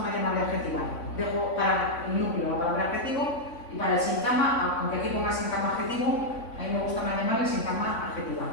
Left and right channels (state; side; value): late; right; 3.5 ms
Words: llamarle adjetival. Dejo para el núcleo la palabra adjetivo y para el sintagma, aunque aquí ponga sintagma adjetivo, a mí me gusta más llamarle sintagma adjetival.